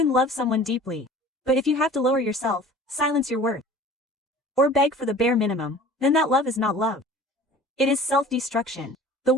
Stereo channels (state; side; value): normal; both; correlation 0.44